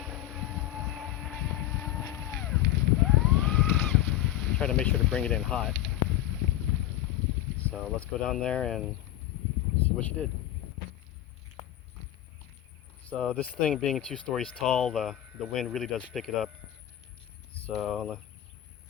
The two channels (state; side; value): quieter; right; 13.3 dB